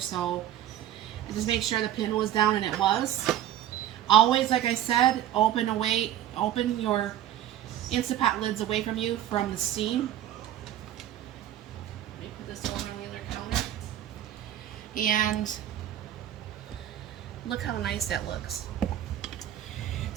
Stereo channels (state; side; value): quieter; left; 11.9 dB